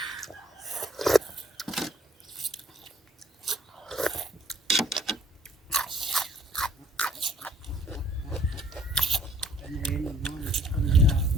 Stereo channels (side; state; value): both; normal; correlation 0.59